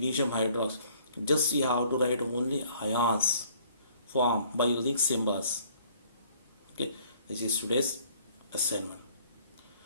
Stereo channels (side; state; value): both; inverted; correlation -0.59